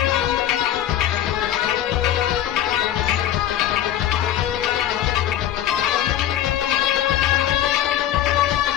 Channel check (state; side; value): quieter; right; 11.5 dB